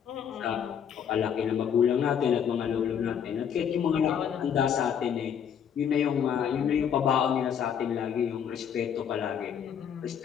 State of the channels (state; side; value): quieter; right; 8.2 dB